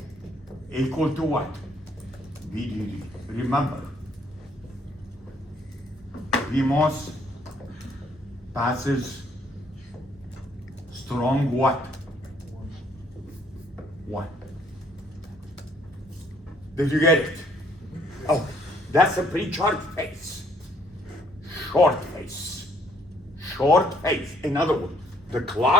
equal to what? VDD. Remember, PMOS passes strong what? 1. Did you get it? Oh, that's a pre-charge phase. Short phase. Short phase. In other words, the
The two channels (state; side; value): normal; both; correlation 0.65